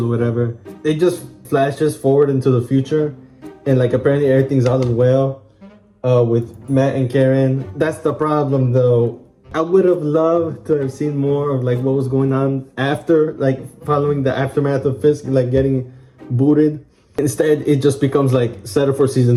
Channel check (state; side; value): identical; both; correlation 1.00